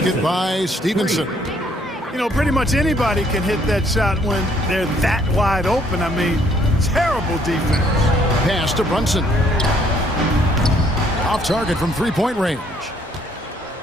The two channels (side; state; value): both; normal; correlation 0.65